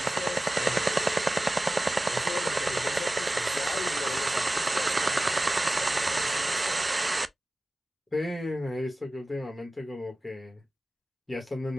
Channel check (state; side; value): normal; both; correlation 0.96